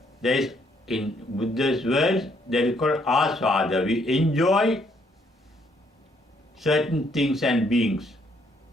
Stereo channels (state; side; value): normal; both; correlation 0.69